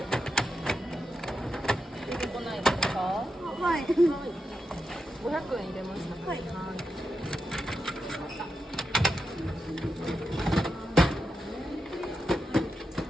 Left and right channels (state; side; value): normal; both; correlation 0.87